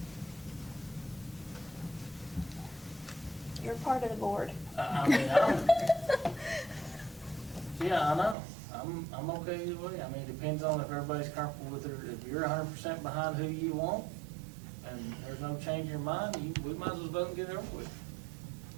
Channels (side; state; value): left; drops out; at 8.3 s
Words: You're part of the board. I mean, yeah, I know. I'm okay either way. I mean, it depends on if everybody's comfortable with it. If you're 100% behind who you want, and there's no change in your mind, we might as well vote and get it over with.